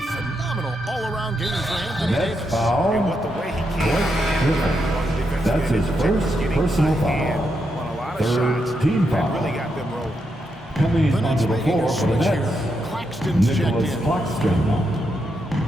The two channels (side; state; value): left; noise; hum, 23 dB below the sound